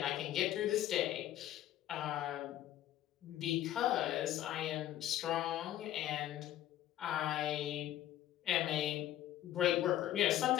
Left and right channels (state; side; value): quieter; right; 12.8 dB